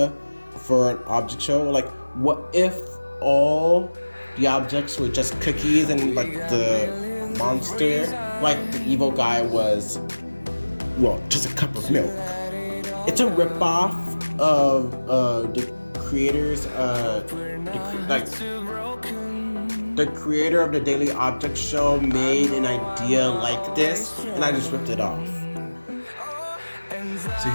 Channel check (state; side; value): inverted; both; correlation -1.00